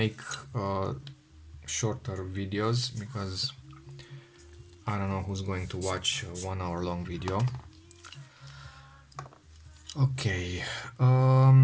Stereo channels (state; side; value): identical; both; correlation 1.00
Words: shorter videos because I don't know who's going to watch a 1 hour long video. Okay,